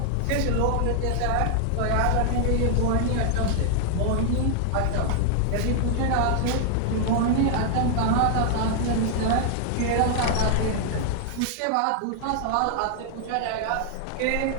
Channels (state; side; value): different; both; correlation 0.00